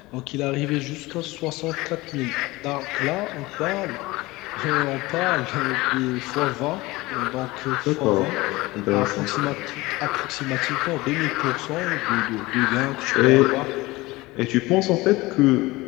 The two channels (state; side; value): quieter; right; 20.7 dB